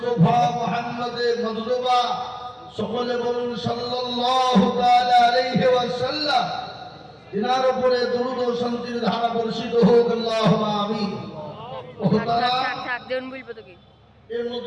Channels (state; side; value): identical; both; correlation 1.00